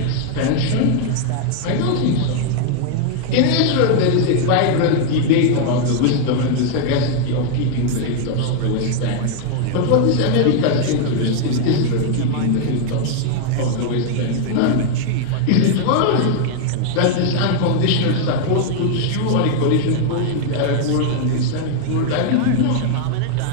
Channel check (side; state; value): both; different; correlation 0.00